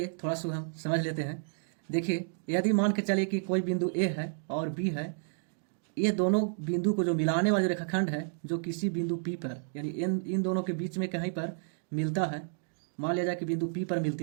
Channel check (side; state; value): left; silent; digital silence